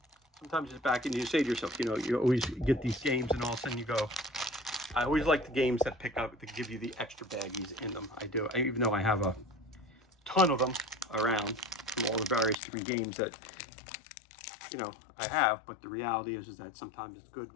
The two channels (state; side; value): drops out; right; at 12.6 s